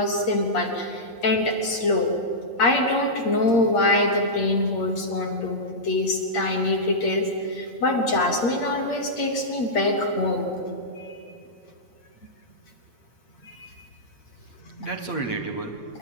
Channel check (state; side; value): late; right; 8.6 ms